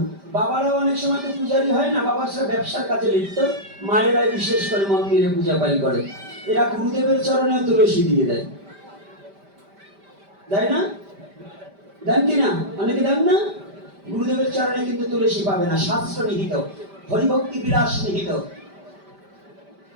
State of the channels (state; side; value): late; left; 5.1 ms